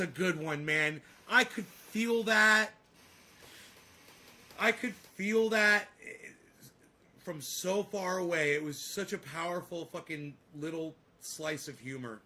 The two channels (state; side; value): identical; both; correlation 1.00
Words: good one, man. I could feel that. From so far away. It was such a powerful fucking little slice of humor.